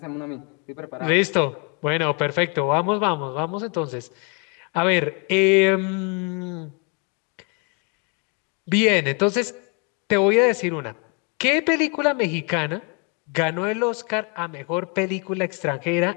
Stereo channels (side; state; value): right; quieter; 35.5 dB